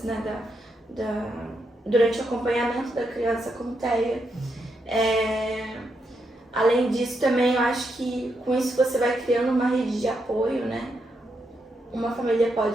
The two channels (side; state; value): both; normal; correlation 0.81